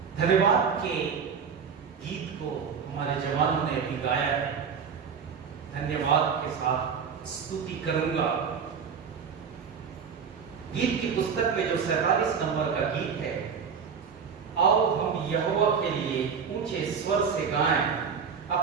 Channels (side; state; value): left; quieter; 6.4 dB